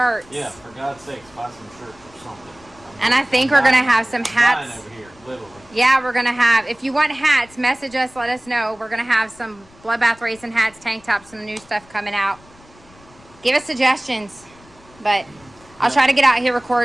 Yeah, for God's sakes, buy some shirts or something. And I think we're going to have some hats. Over here, literally. Yeah, we're going to have. If you want hats, message us. Let us know. We're going to have some Bloodbath Racing hats, tank tops, some new stuff coming out. Give us suggestions. But I'll try to get out here,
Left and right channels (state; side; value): noise; left; rumble, 26 dB below the sound